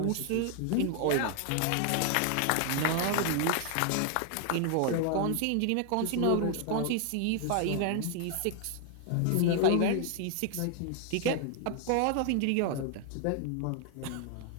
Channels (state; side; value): different; both; correlation 0.00